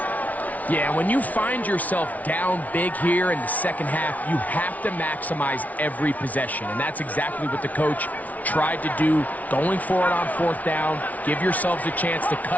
Yeah, when you find yourself down big here in the second half, you have to maximize every possession, and that's exactly what the coach tried to do, going for it on fourth down. Give yourselves a chance to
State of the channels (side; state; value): right; late; 0.072 ms